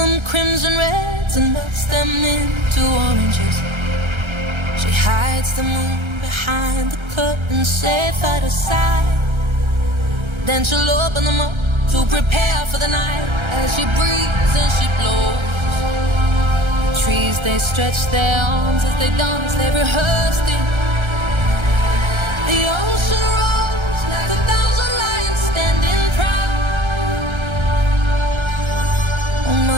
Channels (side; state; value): left; late; 1.3 ms